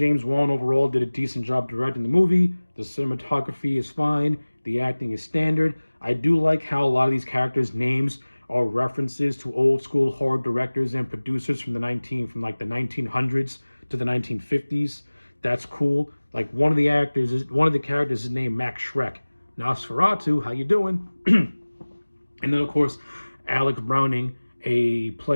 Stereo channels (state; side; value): inverted; both; correlation -1.00